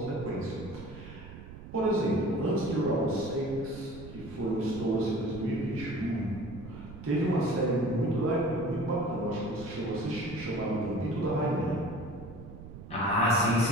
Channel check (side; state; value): right; noise; rumble, 14 dB below the sound